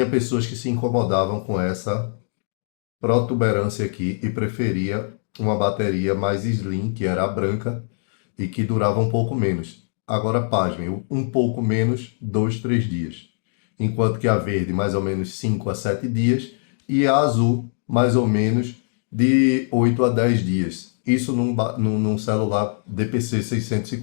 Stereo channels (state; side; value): silent; right; digital silence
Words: pessoas que se incomodavam com essa protuberância aqui e preferia uma bateria mais slim, que era a branca, e que durava um pouco menos. Agora, pasmem, um pouco menos, 2, 3 dias. Enquanto que a verde, mais ou menos 5 a 7 dias, e a azul, mais ou menos de 8 a 10 dias. Isso num celular DPC